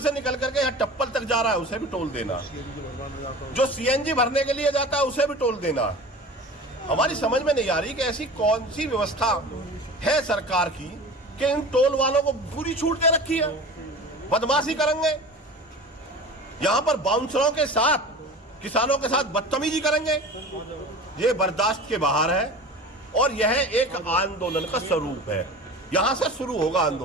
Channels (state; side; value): normal; both; correlation 0.37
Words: से निकल करके यहाँ टप्पल तक जा रहा है उसे भी टोल देना है, जो सीएनजी भरने के लिए जाता है उसे भी टोल देना है। हमारी समझ में नहीं आ रही कि ऐसी कौन सी व्यवस्था है सरकार की कि इन टोल वालों को पूरी छूट दे रखी है, बदमाशी करेंगे, यहां पर बाउंसरों के साथ किसानों के साथ बदतमीजी करेंगे। ये बर्दाश्त के बाहर है और यह एक आंदोलन का स्वरूप है। यहां से शुरू होगा